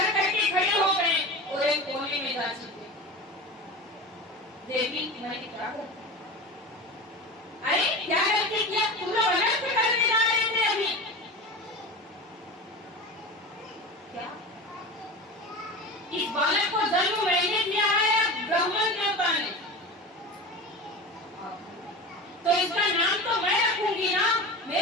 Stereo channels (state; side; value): normal; both; correlation 0.30